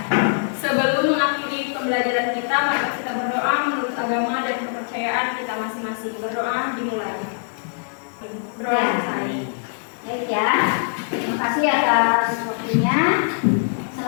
Sebelum mengakhiri pembelajaran kita, mari kita berdoa menurut agama dan kepercayaan kita masing-masing. Berdoa dimulai. Berdoa Ya. selesai. Baik ya, terima kasih atas waktunya.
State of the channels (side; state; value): right; silent; digital silence